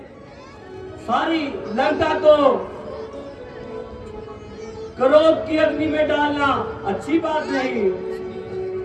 सारी लंका को क्रोध की अग्नि में डालना अच्छी बात नहीं।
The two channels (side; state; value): both; identical; correlation 1.00